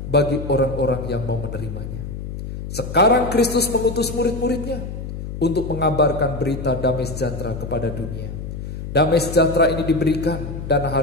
bagi orang-orang yang mau menerimanya. Sekarang Kristus mengutus murid-muridnya untuk mengabarkan berita damai sejahtera kepada dunia. Damai sejahtera ini diberikan dan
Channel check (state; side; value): noise; left; hum, 7 dB below the sound